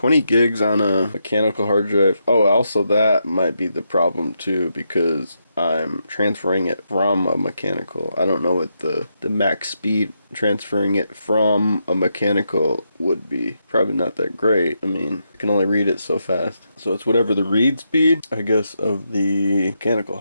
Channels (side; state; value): both; inverted; correlation -0.82